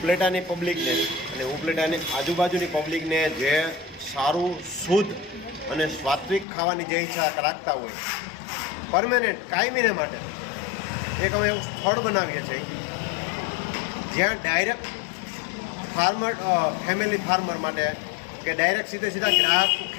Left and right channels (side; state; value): right; drops out; at 6.5 s